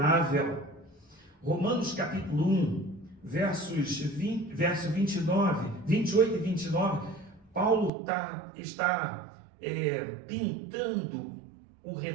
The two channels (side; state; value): left; drops out; at 7.9 s